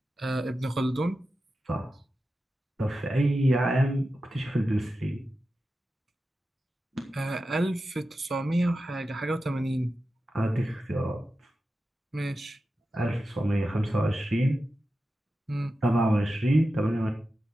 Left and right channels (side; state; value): both; normal; correlation 0.92